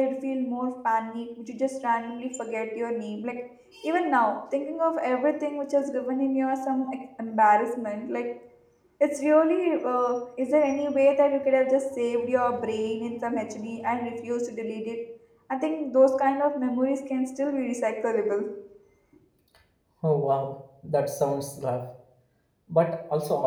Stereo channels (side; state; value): both; identical; correlation 1.00